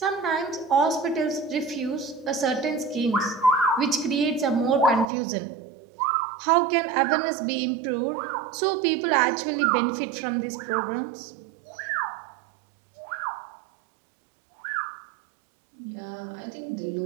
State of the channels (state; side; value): drops out; left; at 5.1 s